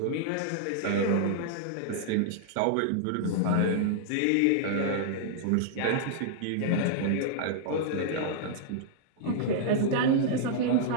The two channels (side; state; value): both; different; correlation -0.01